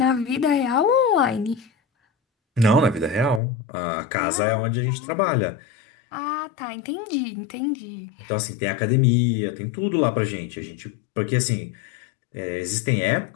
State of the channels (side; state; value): right; drops out; at 3.4 s